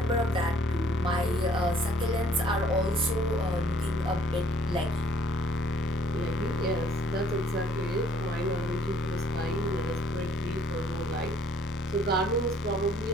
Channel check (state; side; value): normal; both; correlation 0.61